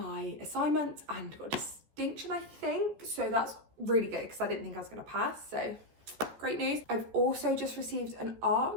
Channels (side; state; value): left; late; 14 ms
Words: assignment and got a distinction, I think, so that's really good because I didn't think I was going to pass, so great news. I've also just received an